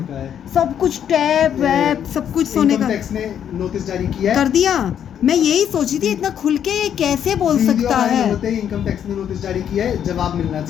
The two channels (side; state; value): right; quieter; 9.2 dB